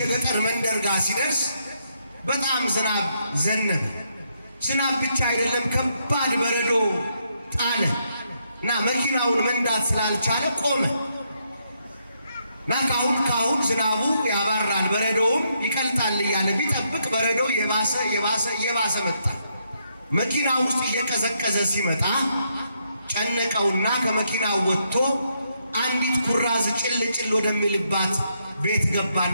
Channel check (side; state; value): both; inverted; correlation -0.77